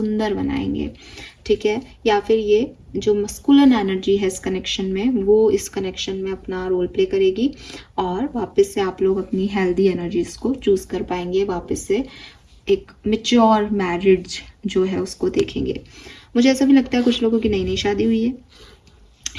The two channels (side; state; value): both; identical; correlation 1.00